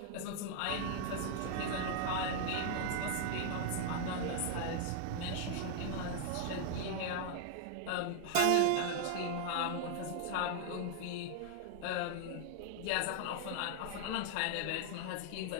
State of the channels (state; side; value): different; both; correlation 0.00